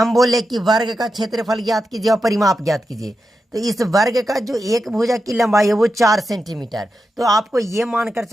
बोले कि वर्ग का क्षेत्रफल ज्ञात कीजिए और परिमाप ज्ञात कीजिए। तो इस वर्ग का जो एक भुजा की लंबाई है वो 4 सेंटीमीटर। तो आपको ये मानकर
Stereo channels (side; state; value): both; normal; correlation 0.89